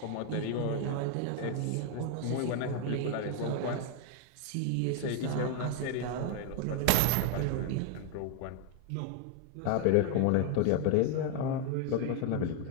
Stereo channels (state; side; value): different; both; correlation 0.01